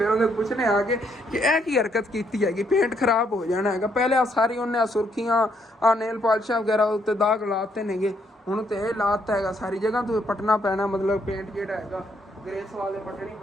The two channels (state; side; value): normal; both; correlation 0.72